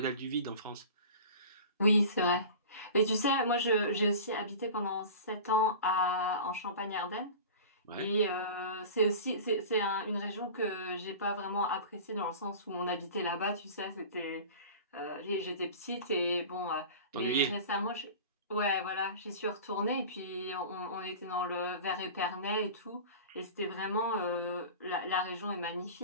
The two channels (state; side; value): inverted; both; correlation -0.36